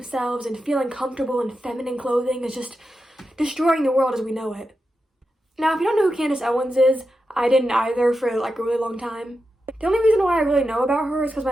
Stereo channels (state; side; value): normal; both; correlation 0.89